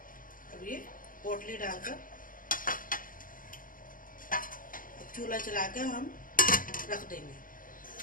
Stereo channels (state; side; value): late; right; 0.40 ms